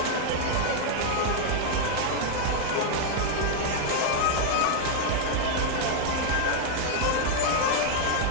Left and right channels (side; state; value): both; different; correlation 0.00